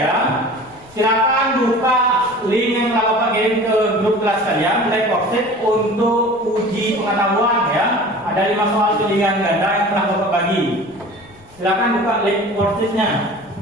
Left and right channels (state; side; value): noise; left; rumble, 27 dB below the sound